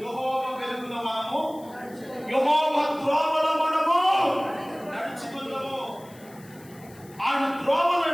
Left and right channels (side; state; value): left; noise; hiss, 24 dB below the sound